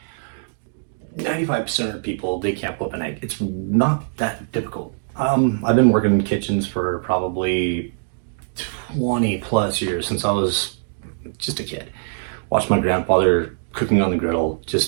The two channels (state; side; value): silent; left; digital silence